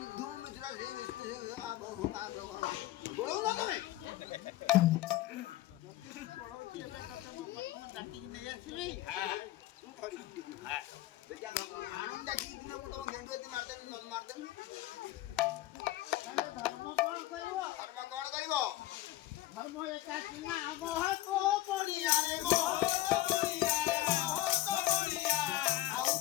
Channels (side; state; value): right; quieter; 15.6 dB